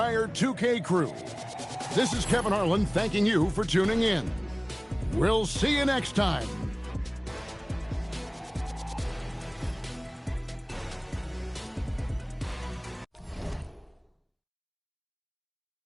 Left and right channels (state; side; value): identical; both; correlation 1.00